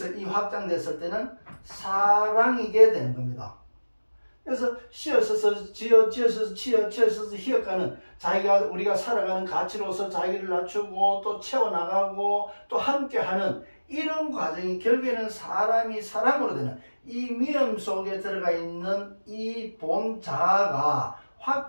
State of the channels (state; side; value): inverted; both; correlation -1.00